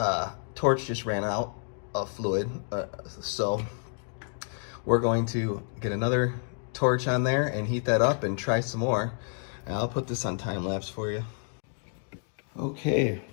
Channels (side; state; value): right; silent; 58 dB below the other